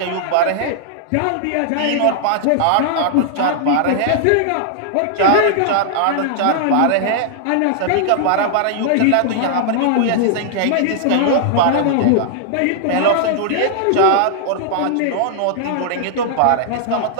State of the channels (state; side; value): different; both; correlation -0.01